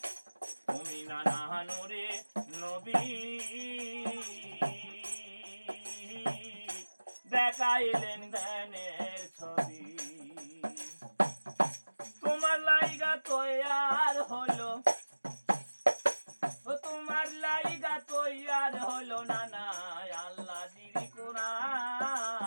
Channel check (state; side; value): inverted; both; correlation -1.00